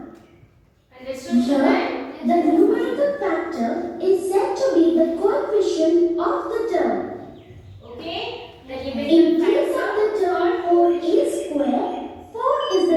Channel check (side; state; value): both; identical; correlation 1.00